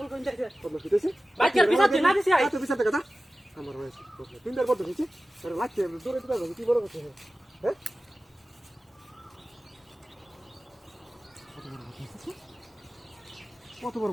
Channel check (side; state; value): both; normal; correlation 0.95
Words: কোন যাইছে বাইক গিয়ে বিচার দিই না দিছি আই তুই বিছা দেখা দা আমার হয়েছে তিনবার বড় হয়েছে আরে লাগছে দূরে দিতে হবে কি বড় কথা হ্যাঁ কত বড়